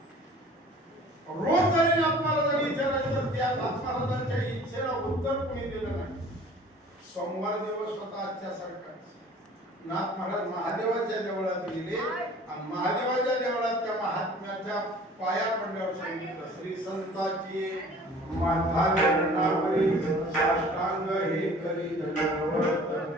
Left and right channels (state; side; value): normal; both; correlation 0.48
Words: रोज जरी आपल्याला जरी विचारायचं तर त्या महाराजांच्या इच्छेला उत्तर कोणी दिलं नाही. सोमवार दिवस होता आजच्या सारखा. नाथ महाराज महादेवाच्या देवळात गेले आणि महादेवाच्या देवळात त्या महात्म्याच्या पाया पडल्यावर सांगितलं, श्री संताची माथा चरणावरी साष्टांग हे करी दंडवत.